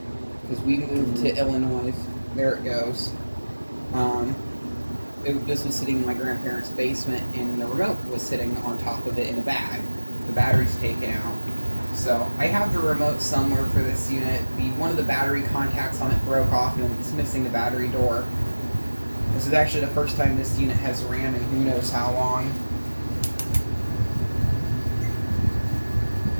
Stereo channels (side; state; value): both; inverted; correlation -1.00